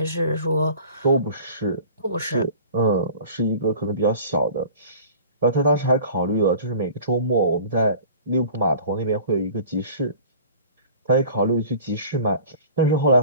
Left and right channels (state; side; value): inverted; both; correlation -0.44